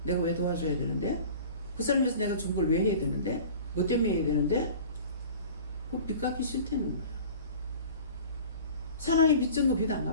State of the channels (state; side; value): inverted; both; correlation -0.42